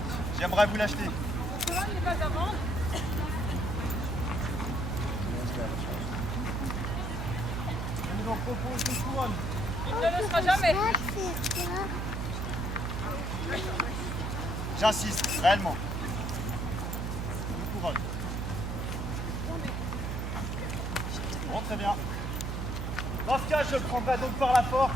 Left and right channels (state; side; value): noise; right; hum, 2 dB below the sound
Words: J'aimerais vous l'acheter. Je vous en propose une couronne. J'insiste, réellement. Une couronne. Bon, très bien. Dans ce cas, je le prendrai donc par la force.